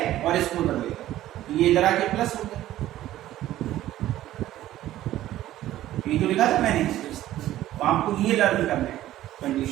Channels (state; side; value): quieter; left; 14.0 dB